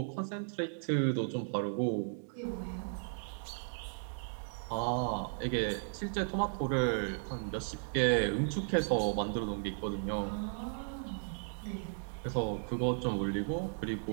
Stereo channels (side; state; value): left; silent; digital silence